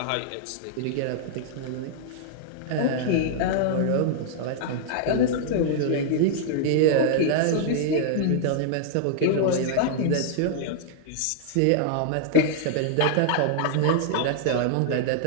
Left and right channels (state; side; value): different; both; correlation -0.01